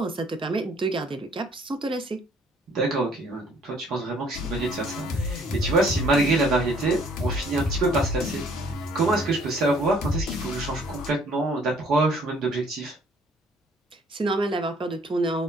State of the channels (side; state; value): both; normal; correlation 0.60